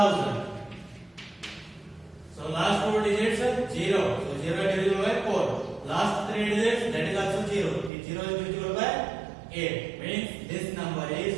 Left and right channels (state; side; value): drops out; left; at 7.9 s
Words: So last four digits are 0. So 0 is divisible by 4. Last three digits, that is also 0. If 0 is divisible by 8. Means this number is